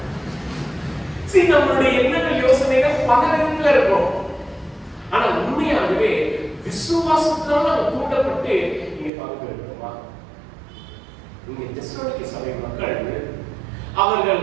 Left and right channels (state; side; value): drops out; left; at 9.1 s